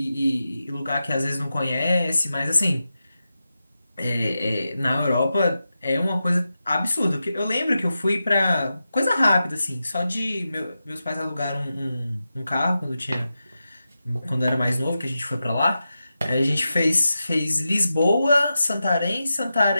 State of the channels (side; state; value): both; inverted; correlation -0.91